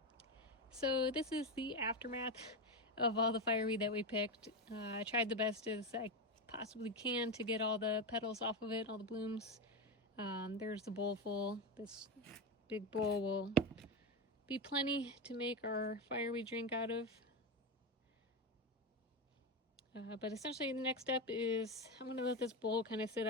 So this is the aftermath of all the fireweed that we picked. I tried the best as I possibly can to get all the petals off of it, all the blooms. There's the bowl full. This big bowl will be plenty to make our fireweed drink out of. But essentially the next step is I'm going to let this bowl kind of sit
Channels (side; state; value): both; normal; correlation 0.14